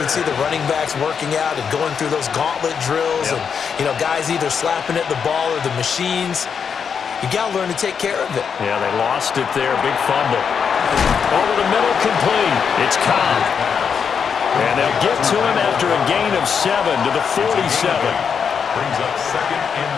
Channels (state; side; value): quieter; right; 6.7 dB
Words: see the running backs working out and going through those gauntlet drills, and, you know, guys either slapping at the ball or the machines. You got to learn to take care of it. Yeah, they lost it there. Big fumble. Over the middle, complete. It's Cobb. And they'll get to him after a gain of 7 to the 47. Brings up 2nd and